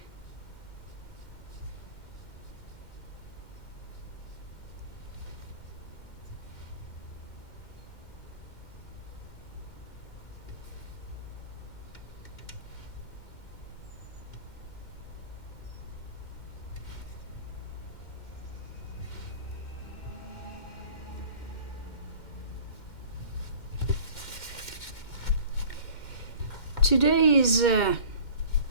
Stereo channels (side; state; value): right; late; 2.1 ms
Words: Today is the